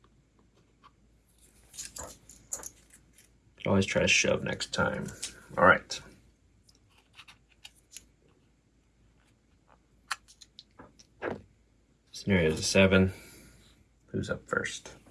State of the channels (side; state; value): both; identical; correlation 1.00